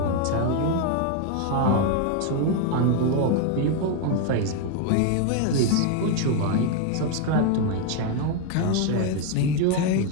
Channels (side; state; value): both; different; correlation 0.01